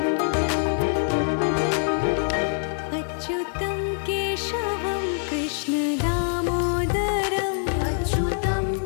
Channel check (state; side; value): silent; right; digital silence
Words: अच्युतं केशवं कृष्ण दामोदरं